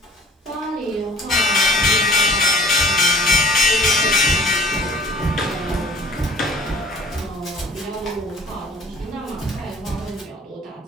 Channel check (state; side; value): normal; both; correlation 0.51